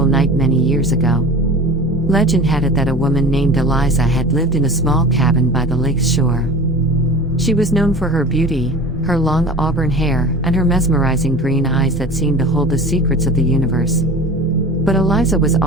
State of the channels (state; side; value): normal; both; correlation 0.37